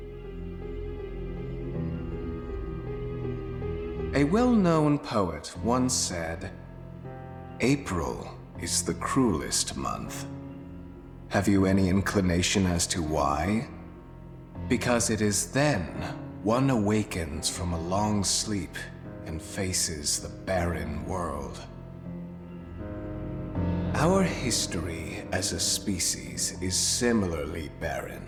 A well-known poet once said, "April is the cruelest month." Have you any inclination as to why? Because it is then one awakens from a long sleep and faces the barren world. Our history as a species is similarly barren,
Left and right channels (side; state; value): both; identical; correlation 1.00